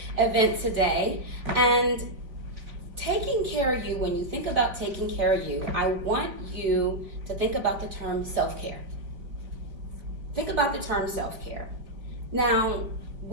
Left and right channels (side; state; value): left; late; 3.8 ms